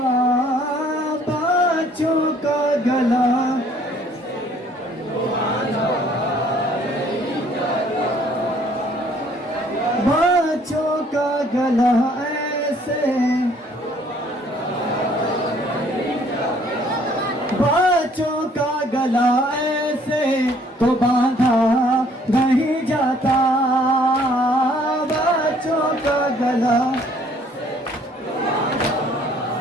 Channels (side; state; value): both; normal; correlation 0.60